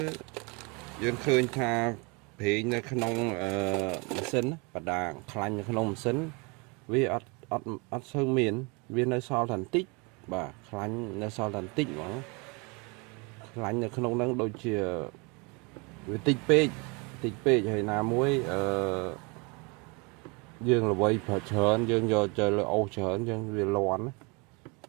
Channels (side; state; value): left; quieter; 30.0 dB